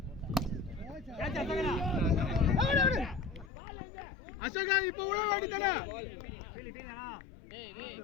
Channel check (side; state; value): right; drops out; at 3.5 s